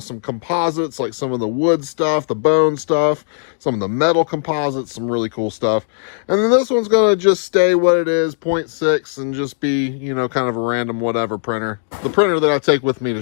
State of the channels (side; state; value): right; silent; digital silence